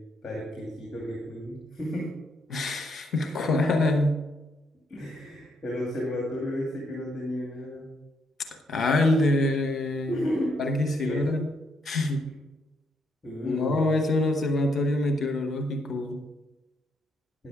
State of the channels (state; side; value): normal; both; correlation 0.75